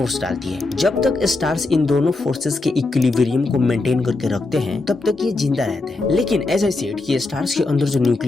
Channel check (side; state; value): right; quieter; 3.3 dB